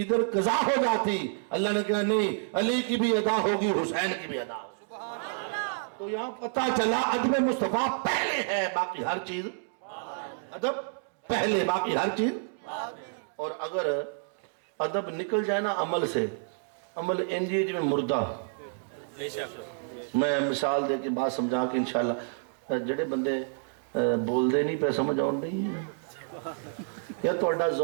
ادھر قضا ہو جاتی. اللہ نے کہا نہیں علی کی بھی ادا ہوگی, حسین کی بھی ادا ہوگی. تو یہاں پتہ چلا ادب مصطفیٰ پہلے ہے باقی ہر چیز, ادب پہلے باقی ہر چیز. اور اگر ادب نکل جائے نا عمل سے، عمل انجی میں مردہ. میں مثال دے کے بات سمجھا کے انشاءاللہ جڑے بندے بول دے نہیں پہ سمجھ آن نہیں ہے یا توڑا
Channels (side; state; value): left; silent; digital silence